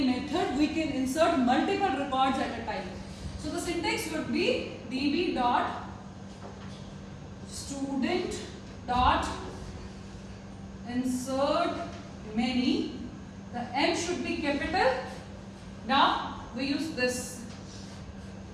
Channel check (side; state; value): both; identical; correlation 1.00